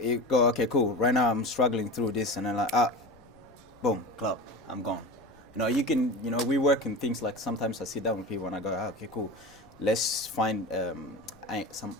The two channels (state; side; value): noise; left; rumble, 27 dB below the sound